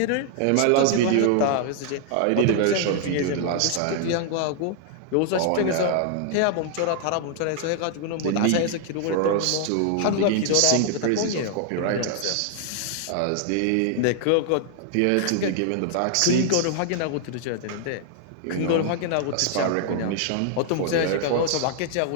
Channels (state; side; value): different; both; correlation 0.00